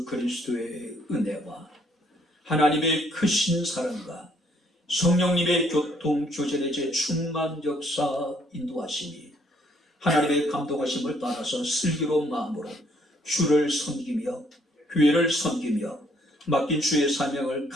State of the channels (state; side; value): normal; both; correlation 0.66